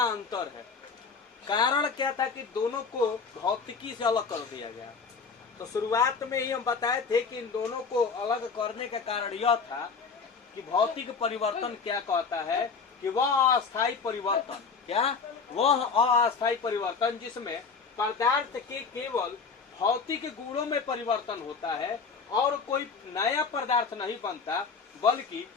अंतर है। कारण क्या था कि दोनों को भौतिकी से अलग कर दिया गया। तो शुरुआत में ही हम बताए थे कि इन दोनों को अलग करने का कारण यह था कि भौतिक परिवर्तन क्या कहता है कि वह अस्थायी परिवर्तन, क्या वह अस्थायी परिवर्तन जिसमें पदार्थ के केवल भौतिक गुणों में परिवर्तन होता है और कोई नया पदार्थ नहीं बनता, बल्कि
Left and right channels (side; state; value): right; quieter; 5.2 dB